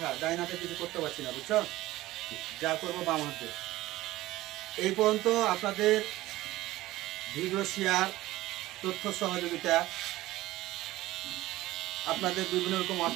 ডাইন হাতে কিছু করতে পারছি না, বুঝছো? যা করবো বাম হাতে। এই পর্যন্ত আপনাদের ভিডিও শেয়ার, তথ্য সহযোগিতা, আপনাদের বিভিন্ন রকম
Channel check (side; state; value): left; quieter; 17.0 dB